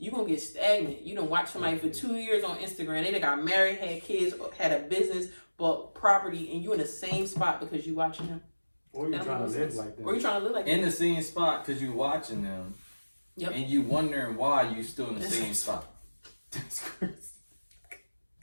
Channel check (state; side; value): inverted; both; correlation -1.00